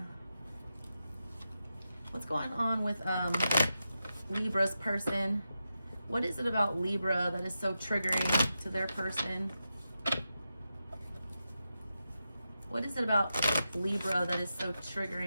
What's going on with Libra's person? What is it about Libra that is so triggering to their person? What is it about Libra that is so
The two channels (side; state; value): both; inverted; correlation -0.89